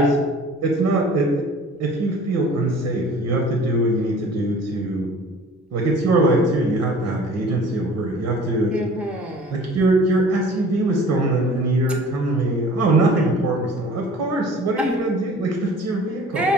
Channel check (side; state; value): both; normal; correlation 0.47